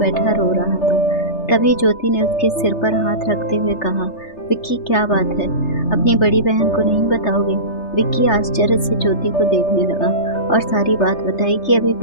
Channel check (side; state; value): right; late; 3.3 ms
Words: रो रहा था। तभी ज्योति ने उसके सिर पर हाथ रखते हुए कहा, विक्की क्या बात है, अपनी बड़ी बहन को नहीं बताओगे। विक्की आश्चर्य से ज्योति को देखने लगा और सारी बात बताई कि अभी